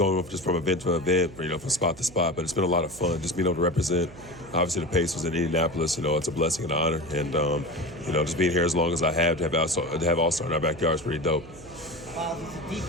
just from event to event, from spot to spot, but it's been a lot of fun just being able to represent. Obviously, the Pacers in Indianapolis, it's a blessing and an honor. And, just being here as long as I have to have All-Star in our backyard is pretty dope. Myles, it's a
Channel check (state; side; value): noise; right; hum, 19 dB below the sound